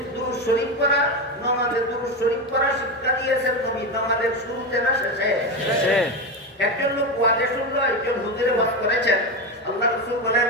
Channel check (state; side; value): normal; both; correlation 0.16